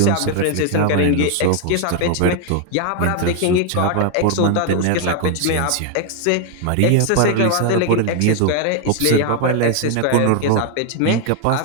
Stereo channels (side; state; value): both; different; correlation 0.00